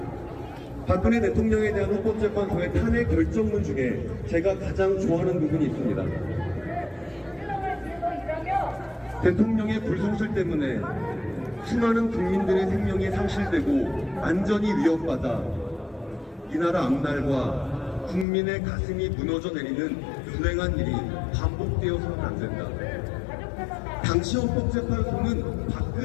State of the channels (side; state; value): right; drops out; at 18.2 s